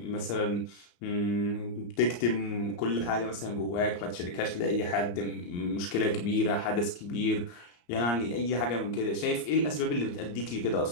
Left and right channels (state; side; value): late; right; 34 ms